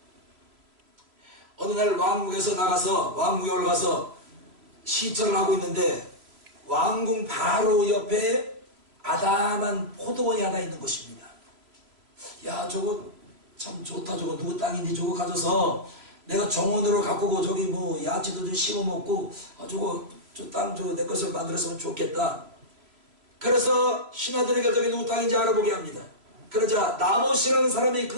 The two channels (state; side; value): late; left; 3.1 ms